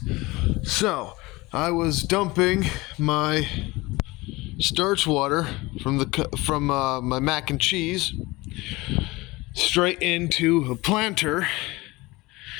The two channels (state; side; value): quieter; right; 21.6 dB